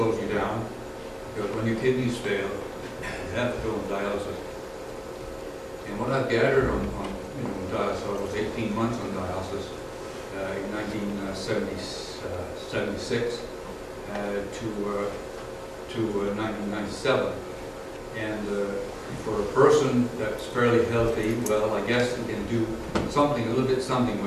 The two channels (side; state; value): both; identical; correlation 1.00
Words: you down, because when your kidneys fail, you have to go on dialysis. And what I've gathered on dialysis, I was 18 months on dialysis in 1976 to 1997. And for a person that's fairly healthy, well, I guess you can do something, a little bit something